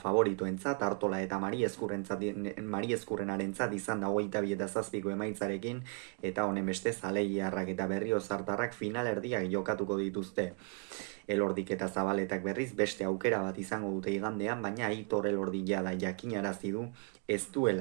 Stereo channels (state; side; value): quieter; left; 38.0 dB